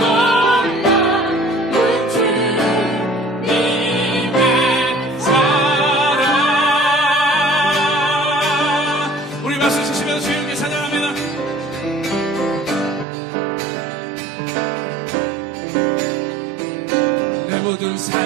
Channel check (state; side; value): drops out; left; at 13.1 s